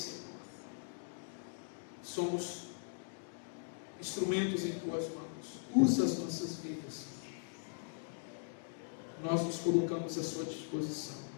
Somos instrumentos em Tuas mãos. Usa as nossas vidas. Nós nos colocamos à Sua disposição.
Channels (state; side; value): silent; right; digital silence